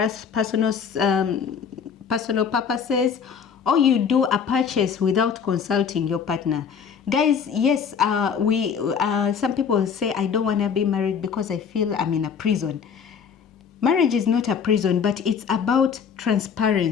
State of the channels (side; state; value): right; quieter; 6.8 dB